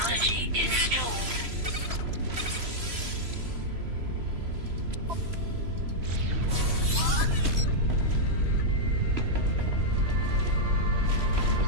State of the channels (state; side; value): late; left; 3.0 ms